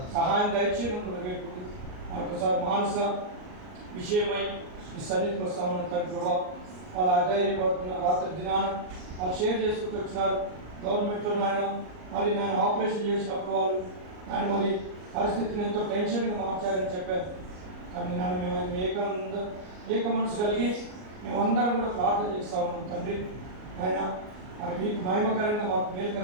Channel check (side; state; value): left; late; 38 ms